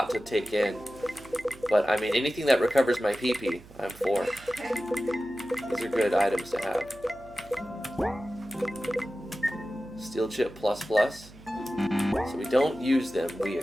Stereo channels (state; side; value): noise; right; hum, 21 dB below the sound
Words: to take in. But, I mean, anything that recovers my PP, I'm for. These are good items to have. Steel chip plus plus. So we don't use them, we